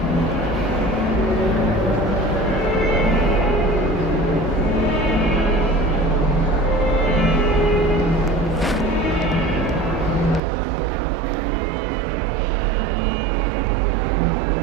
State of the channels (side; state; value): left; drops out; at 10.4 s